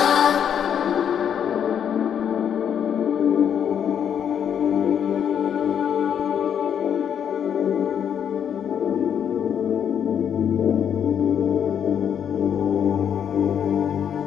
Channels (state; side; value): quieter; right; 8.5 dB